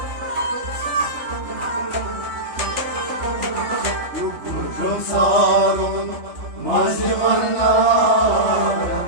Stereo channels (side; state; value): left; late; 3.4 ms